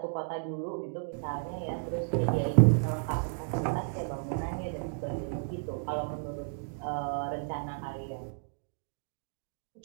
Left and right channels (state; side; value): silent; left; digital silence